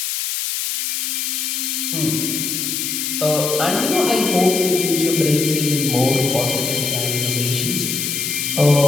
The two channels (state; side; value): noise; left; hiss, 2 dB below the sound